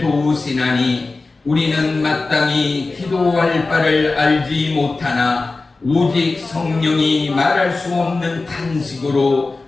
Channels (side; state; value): right; quieter; 3.6 dB